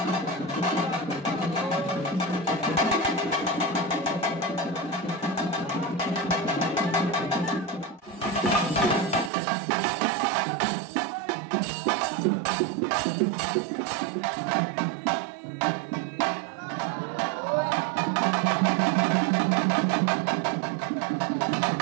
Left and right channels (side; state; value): left; drops out; at 9.3 s